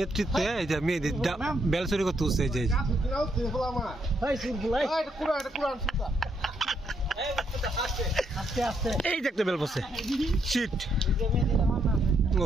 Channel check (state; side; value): normal; both; correlation 0.76